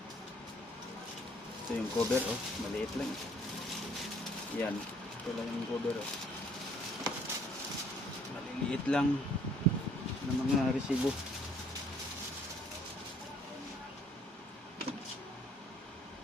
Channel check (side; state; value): both; normal; correlation 0.61